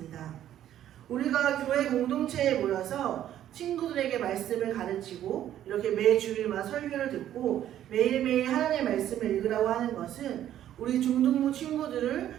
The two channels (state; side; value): quieter; left; 11.6 dB